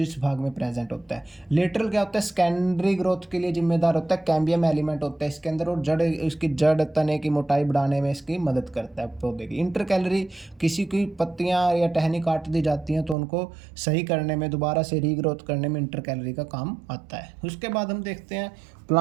भाग में प्रेजेंट होता है। लेटरल क्या होता है? सेकेंडरी ग्रोथ के लिए जिम्मेदार होता है। कैम्बियम एलिमेंट होता है इसके अंदर, और जड़, इसकी जड़ तने की मोटाई बढ़ाने में इसकी मदद करता है पौधे की। इंटरकैलरी, किसी की पत्तियाँ या टहनी काट दी जाती हैं तो उनको सही करने में, दोबारा से रीग्रोथ करने में इंटरकैलरी का काम आता है। उसके बाद हम देखते हैं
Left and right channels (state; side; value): drops out; left; at 13.2 s